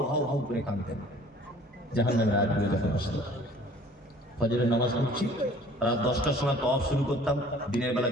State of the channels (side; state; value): both; normal; correlation 0.52